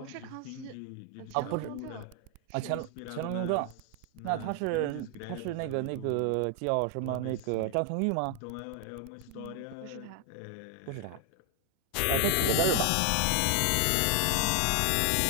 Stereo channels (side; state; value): both; different; correlation 0.00